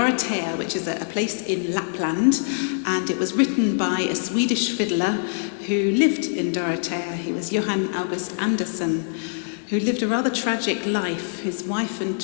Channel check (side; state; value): right; silent; digital silence